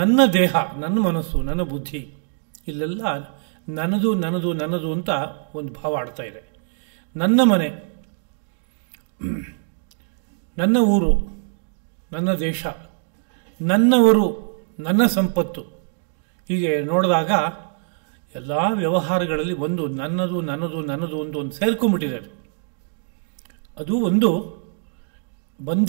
ದೇಹ, ನನ್ನ ಮನಸ್ಸು, ನನ್ನ ಬುದ್ಧಿ, ಇಲ್ಲೆಲ್ಲ ನನ್ನದು ನನ್ನದು ನನ್ನದು ಅಂತ ಒಂದು ಭಾವ ಆಡ್ತಾ ಇದೆ. ನನ್ನ ಮನೆ, ನನ್ನ ಊರು, ನನ್ನ ದೇಶ, ನನ್ನವರು, ನನ್ನ ಸಂಪತ್ತು, ಹೀಗೆ ನೋಡಿದಾಗ ಎಲ್ಲ ವ್ಯವಹಾರಗಳಲ್ಲಿ ಒಂದು ನನ್ನದು ನನ್ನದು ನನ್ನದು ಒಂದು ಸೇರ್ಕೊಂಡ್ಬಿಟ್ಟಿದೆ. ಅದು ಒಂದು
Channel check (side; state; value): left; silent; digital silence